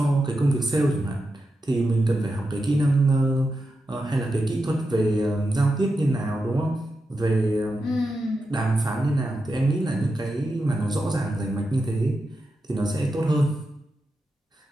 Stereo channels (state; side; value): normal; both; correlation 0.88